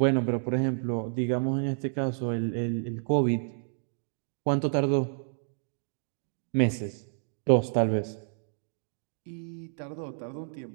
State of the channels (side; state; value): left; silent; digital silence